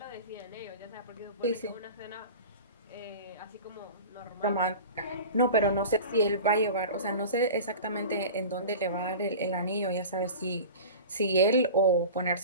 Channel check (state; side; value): inverted; both; correlation -0.35